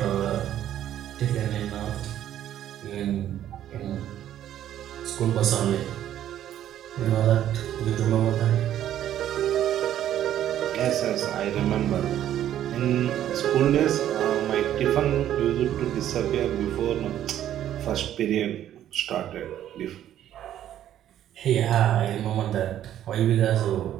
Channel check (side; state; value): left; quieter; 11.4 dB